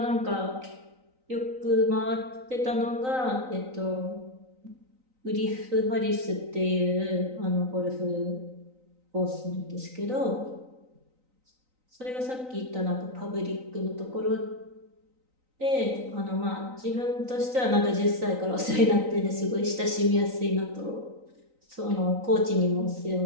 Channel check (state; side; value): late; left; 3.9 ms